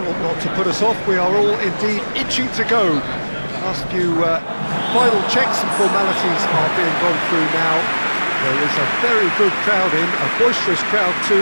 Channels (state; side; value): inverted; both; correlation -1.00